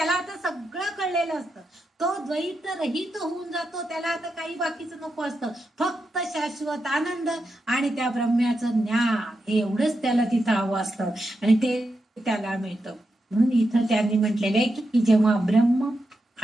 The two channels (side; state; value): both; normal; correlation 0.87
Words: आता सगळं कळलेलं असतं, तो द्वैत रहित होऊन जातो. त्याला आता काही बाकीचं नको असतं, फक्त शाश्वत आनंद आणि त्या ब्रह्म्याचं ज्ञान, हे एवढंच त्याला तिथं हवं असतं आणि ते त्याला मिळतं. म्हणून इथं त्यांनी म्हटलेलं आहे की जेव्हा ब्रह्म